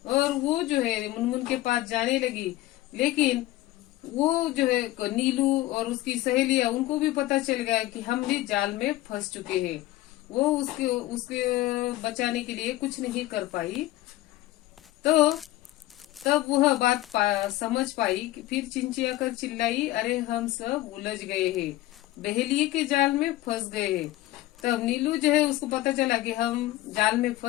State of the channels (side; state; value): right; quieter; 16.6 dB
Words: और वो जो है मुनमुन के पास जाने लगी। लेकिन वो जो है नीलू और उसकी सहेलियां, उनको भी पता चल गया कि हम भी जाल में फंस चुके हैं। वो उसके बचाने के लिए कुछ नहीं कर पाई। तो तब वह बात समझ पाई कि फिर चिंचिया कर चिल्लाई, अरे हम सब उलझ गए हैं, बहेलिए के जाल में फंस गए हैं। तब नीलू जो है उसको पता चला कि हम जाल में